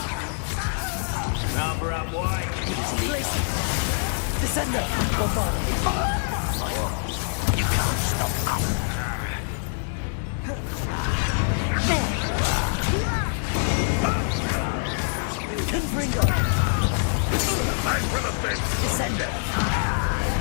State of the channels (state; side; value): silent; right; digital silence